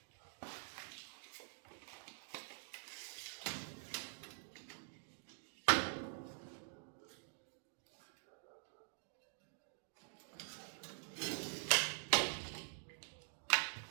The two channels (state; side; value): silent; left; digital silence